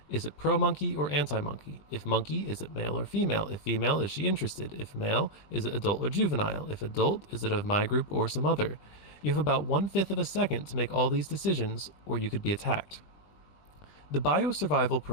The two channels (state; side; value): late; right; 20 ms